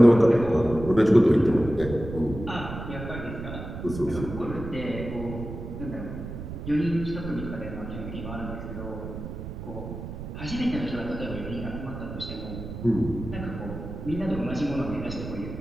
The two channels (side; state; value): right; noise; rumble, 9 dB below the sound